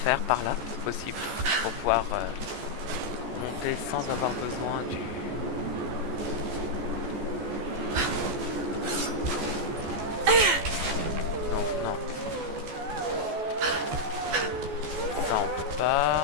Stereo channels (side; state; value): left; late; 14 ms